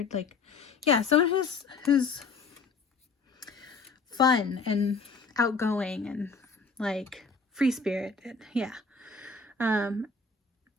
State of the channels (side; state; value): right; quieter; 4.5 dB